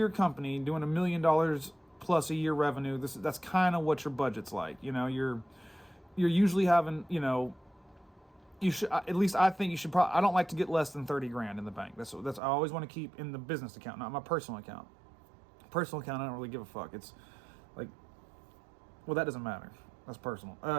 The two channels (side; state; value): left; drops out; at 12.4 s